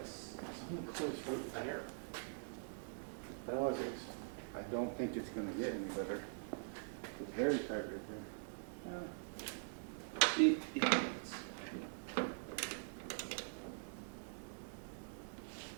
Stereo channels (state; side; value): silent; left; digital silence